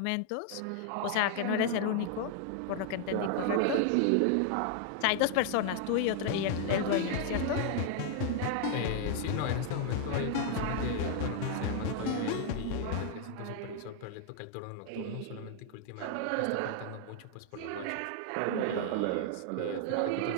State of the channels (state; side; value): different; both; correlation 0.00